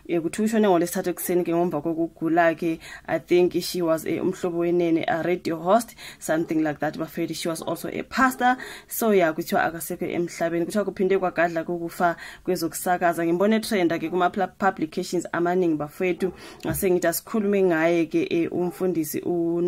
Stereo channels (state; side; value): identical; both; correlation 1.00